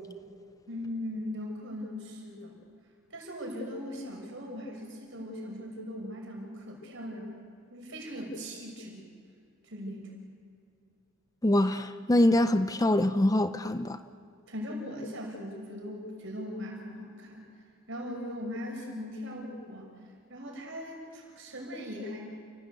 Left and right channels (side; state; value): both; normal; correlation 0.80